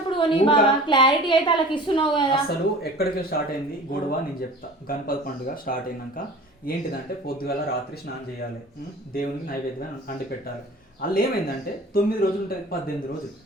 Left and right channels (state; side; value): normal; both; correlation 0.42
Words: కొని బాగా క్లారిటీ అయితే వాళ్ళకి ఇస్తున్నావు కదా. అసలు ఎక్కడికి స్టార్ట్ అయింది గొడవ నేను చెప్తా. గణపతి పండుగ స్టార్ట్ అయినాక ఏంటిదంటే పొద్దుగాల రాత్రి స్నానం చేయాలి, దేవునికి నైవేద్యం అండి పెట్టాలి. వాళ్ళు ఏమైందంటే 9 రోజులు ఉంటుంది 18 రోజులు.